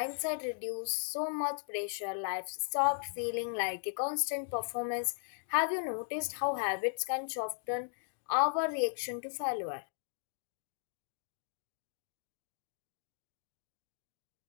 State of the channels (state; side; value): silent; right; digital silence